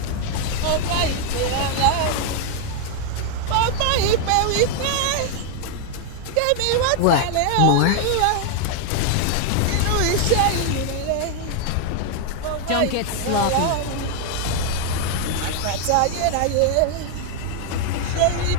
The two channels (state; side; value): different; both; correlation 0.00